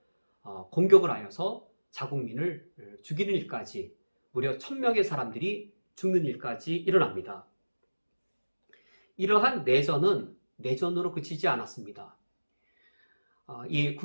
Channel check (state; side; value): inverted; both; correlation -1.00